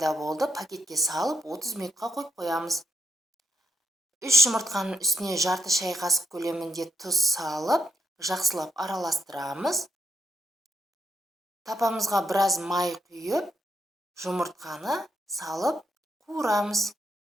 болды. Пакетке салып 30 минутқа қойып қоямыз. 3 жұмыртқаның үстіне жарты шай қасық көлемінде тұз салып, жақсылап араластырамыз. Тапамызға біраз май құйып, жұмыртқаны салып қуырамыз.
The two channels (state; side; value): normal; both; correlation 0.79